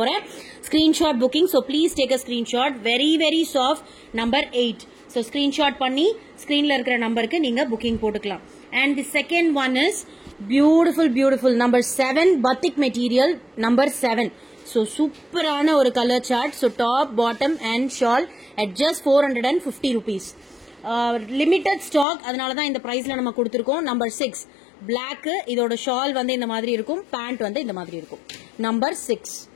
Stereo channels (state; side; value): drops out; right; at 22.1 s